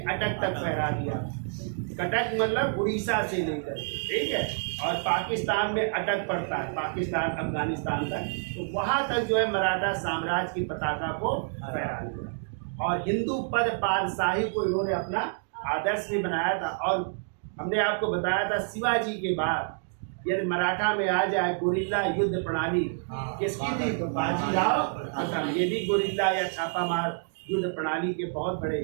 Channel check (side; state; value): left; silent; digital silence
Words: तक फहरा दिया। कटक मतलब उड़ीसा से लेकर, ठीक है, और पाकिस्तान में अटक पड़ता है, पाकिस्तान अफगानिस्तान तक, तो वहां तक जो है मराठा साम्राज्य की पताका को फहरा दिया। और हिंदू पद पातशाही को इन्होंने अपना आदर्श भी बनाया था। और हमने आपको बताया था शिवाजी के बाद यदि मराठा में आ जाए गुरिल्ला युद्ध प्रणाली किसकी थी? तो बाजीराव प्रथम। ये भी गुरिल्ला या छापामार युद्ध प्रणाली के बहुत